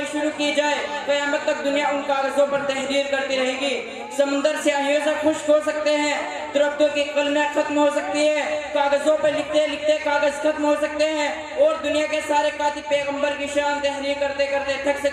شروع کی جائے، قیامت تک دنیا ان کاغذوں پر تحریر کرتی رہے گی۔ سمندر سیاہیوں سے خشک ہو سکتے ہیں، درختوں کی قلمیں ختم ہو سکتی ہے، کاغذوں پر لکھتے لکھتے کاغذ ختم ہو سکتے ہیں اور دنیا کے سارے کاتب پیغمبر کی شان تحریر کرتے کرتے تھک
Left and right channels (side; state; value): both; identical; correlation 1.00